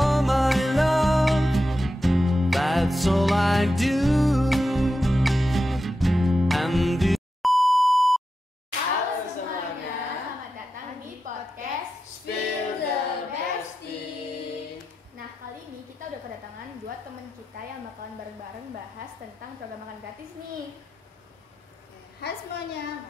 my love, that's all I do. And Halo semuanya, selamat datang di podcast Spill the Bestie. Nah, kali ini kita udah kedatangan dua temen kita yang bakalan bareng-bareng bahas tentang program makan gratis nih. Hai semuanya,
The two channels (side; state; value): both; normal; correlation 0.89